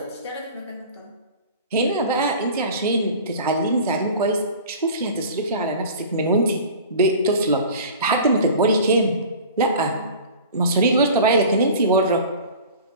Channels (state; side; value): inverted; both; correlation -0.40